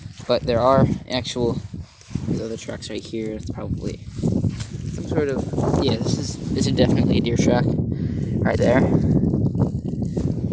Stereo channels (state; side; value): identical; both; correlation 1.00